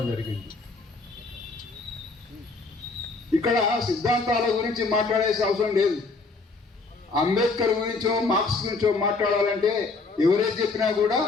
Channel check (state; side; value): quieter; right; 3.9 dB